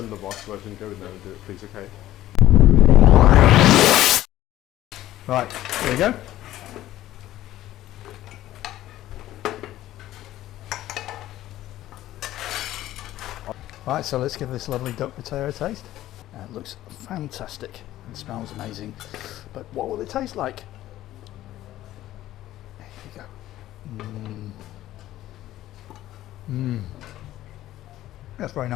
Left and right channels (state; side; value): quieter; right; 14.3 dB